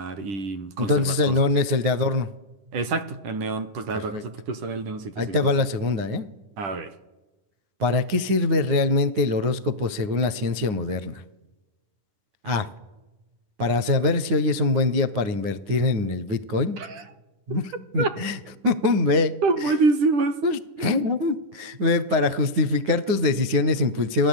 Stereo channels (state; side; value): late; left; 9.6 ms